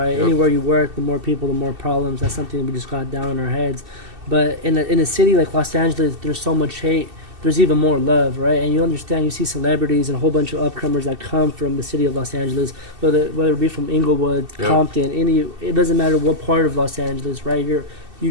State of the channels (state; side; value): late; left; 2.7 ms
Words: Yep. Anywhere you work, the more people, the more problems. That's something we just got down in our heads. But in a city like Los Angeles, there's so much hate. There's even more love, right? And you understand, you see celebrities and a whole bunch of upcomers that come from the city of Los Angeles, whether it be from Inglewood, yep, Compton, it doesn't matter what part of Los Angeles, right?